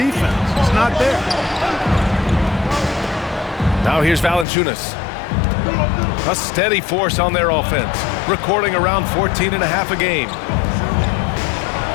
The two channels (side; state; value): right; drops out; at 4.5 s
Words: It's not there. Now here's Valanciunas. A steady force on their offense, recording around 14.5 a game.